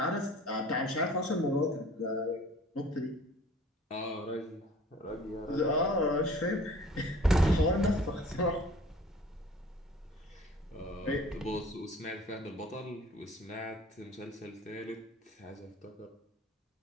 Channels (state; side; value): normal; both; correlation 0.48